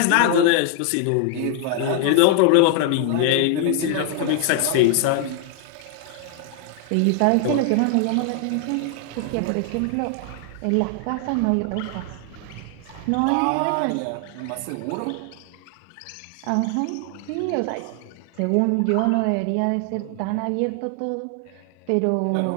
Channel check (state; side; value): different; both; correlation 0.00